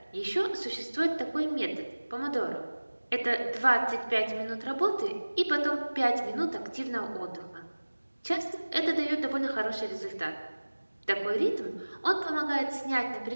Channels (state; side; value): inverted; both; correlation -1.00